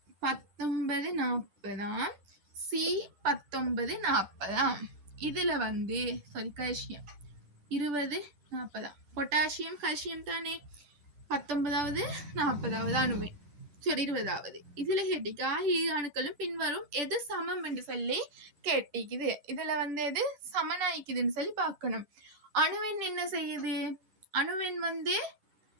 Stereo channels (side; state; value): left; late; 11 ms